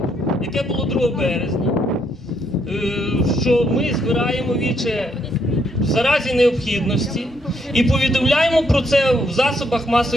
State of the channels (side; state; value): both; normal; correlation 0.73